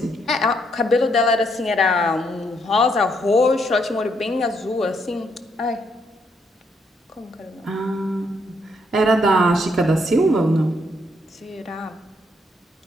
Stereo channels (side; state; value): both; normal; correlation 0.74